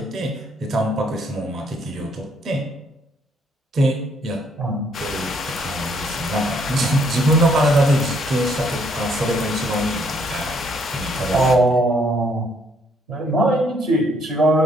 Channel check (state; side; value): normal; both; correlation 0.68